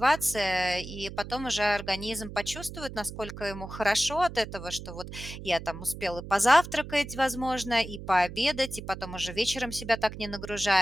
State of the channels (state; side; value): noise; right; hum, 11 dB below the sound